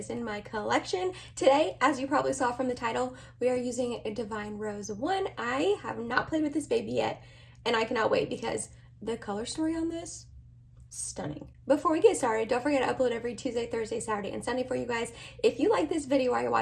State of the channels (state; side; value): identical; both; correlation 1.00